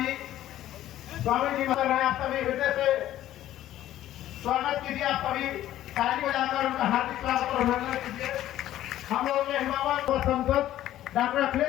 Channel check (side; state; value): right; quieter; 13.2 dB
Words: स्वामी जी बता रहे हैं, आप सभी हृदय से स्वागत कीजिए। आप सभी ताली बजाकर उनका हार्दिक स्वागत और अभिनंदन कीजिए। हम लोग के हिमावत और सांसद डॉक्टर